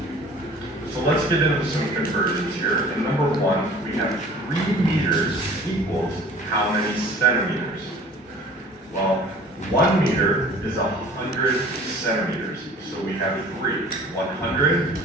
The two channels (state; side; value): normal; both; correlation 0.48